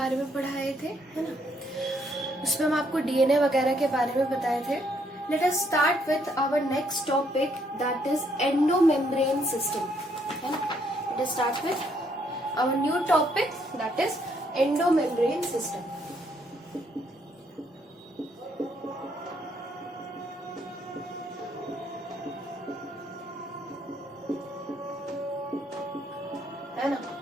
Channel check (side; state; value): both; normal; correlation 0.71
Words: में पढ़ाए थे, है ना। उसमें हम आपको डीएनए वगैरह के बारे में बताए थे। Let us start with our next topic, that is endomembrane system, है ना। Let us start with our new topic, that is endomembrane system. है ना,